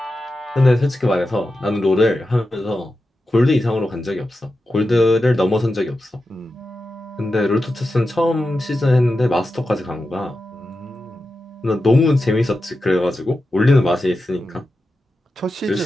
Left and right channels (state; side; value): normal; both; correlation 0.91